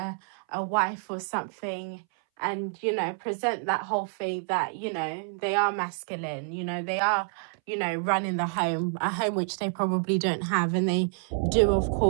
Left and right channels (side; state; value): left; silent; 59 dB below the other